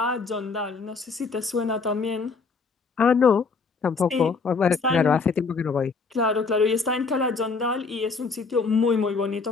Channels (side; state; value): right; quieter; 4.6 dB